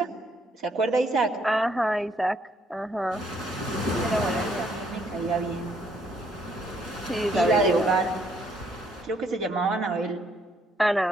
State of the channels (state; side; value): normal; both; correlation 0.68